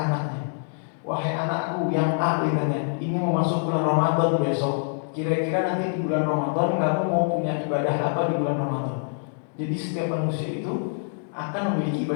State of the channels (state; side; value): silent; right; 62 dB below the other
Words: wahai anakku yang A, ini mau masuk bulan Ramadan besok. Kira-kira nanti di bulan Ramadan kamu mau punya ibadah apa di bulan Ramadan? Jadi setiap manusia itu akan memiliki